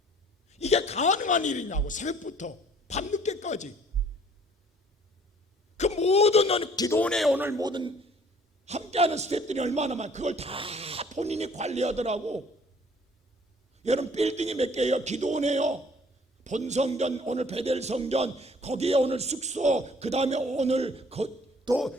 이게 가능한 일이냐고. 새벽부터 밤늦게까지. 그 모든 기도원에 오늘 모든 함께하는 스태프들이 얼마나 많아. 그걸 다 본인이 관리하더라고. 여러분 빌딩이 몇 개예요? 기도원에요. 본성전, 오늘 베델성전, 거기에 오늘 숙소, 그 다음에 오늘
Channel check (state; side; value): normal; both; correlation 0.56